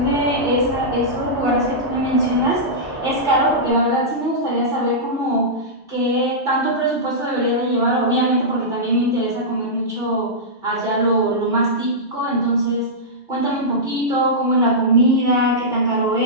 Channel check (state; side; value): normal; both; correlation -0.12